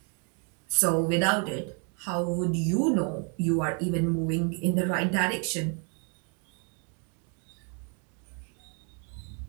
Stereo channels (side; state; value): left; quieter; 39.1 dB